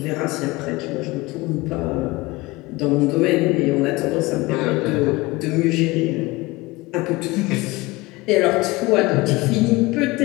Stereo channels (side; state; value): right; quieter; 21.8 dB